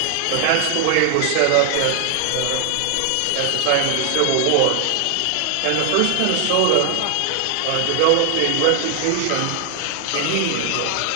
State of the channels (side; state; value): both; different; correlation 0.00